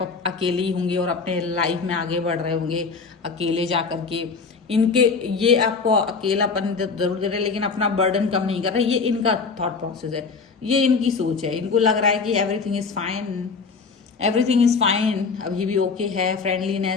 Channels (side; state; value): right; quieter; 4.9 dB